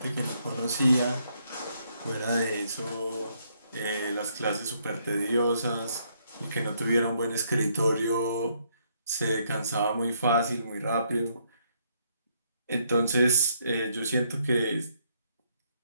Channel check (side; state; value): both; inverted; correlation -0.72